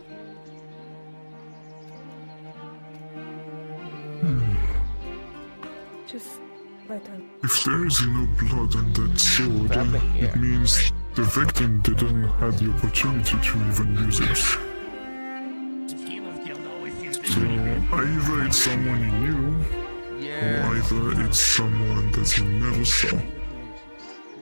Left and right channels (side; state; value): both; inverted; correlation -1.00